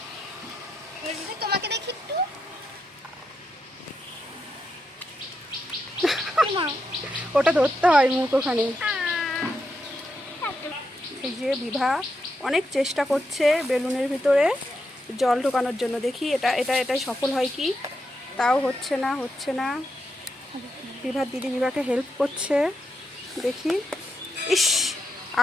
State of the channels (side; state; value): both; normal; correlation 0.84